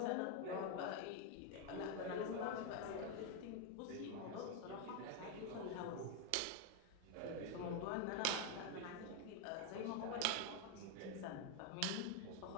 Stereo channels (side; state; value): both; different; correlation 0.01